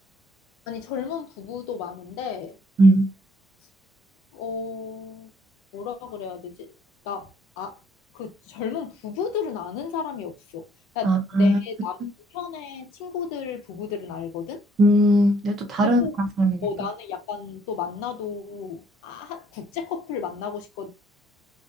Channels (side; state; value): both; normal; correlation 0.63